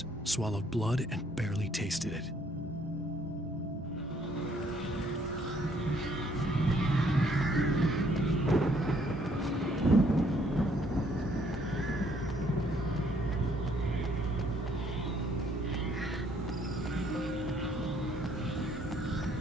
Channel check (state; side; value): normal; both; correlation 0.65